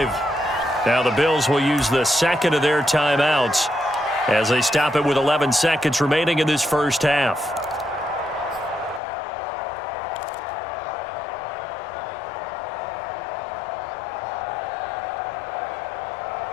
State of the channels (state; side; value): drops out; right; at 9.0 s